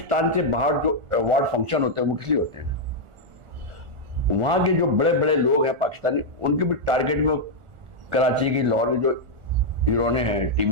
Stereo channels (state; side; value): late; left; 1.4 ms